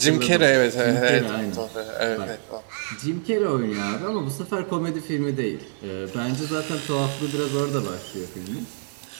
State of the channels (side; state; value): left; silent; 59 dB below the other